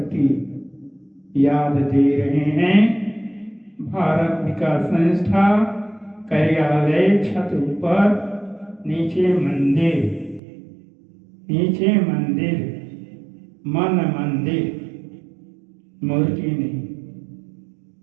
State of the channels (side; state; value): left; drops out; at 10.4 s